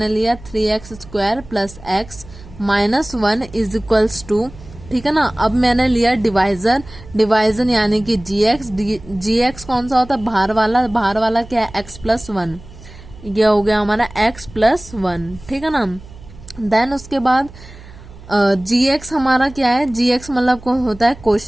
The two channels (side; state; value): right; noise; hum, 19 dB below the sound